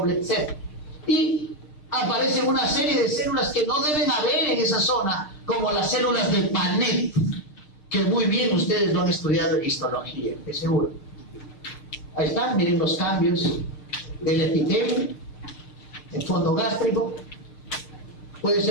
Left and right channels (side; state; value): right; late; 6.6 ms